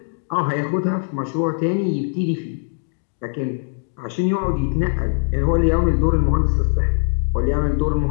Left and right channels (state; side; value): silent; right; 65 dB below the other